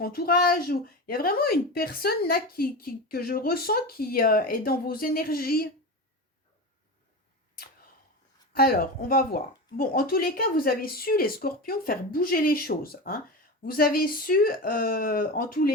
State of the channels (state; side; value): normal; both; correlation 0.24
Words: entourage. Ou il y a vraiment une personne là que je ressens qui est dans vos énergies. Alors, on va voir. Bon, en tous les cas, vous avez su, les scorpions, faire bouger les choses. Hein. Vous avez su, en tous